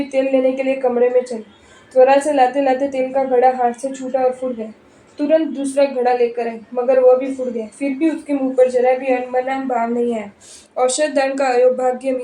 तेल लेने के लिए कमरे में चली। त्वरा से लाते लाते तेल का घड़ा हाथ से छूटा और फूट गया। तुरंत दूसरा घड़ा लेकर आई मगर वह भी फूट गया। फिर भी उसके मुंह पर जरा भी अनमना भाव नहीं आया। औषध दान का अयोभाग्य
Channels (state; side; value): identical; both; correlation 1.00